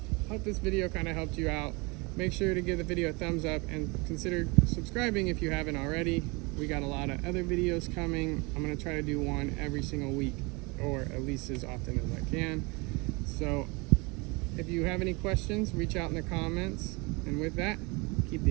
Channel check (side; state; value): left; quieter; 27.5 dB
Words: Hope this video kind of helped you out. Make sure to give the video a thumbs up and consider subscribing if you haven't already. We got a lot of other videos coming. I'm going to try to do one every single week, or at least as often as I can. So if you have any questions, reach out in the comments. And with that, keep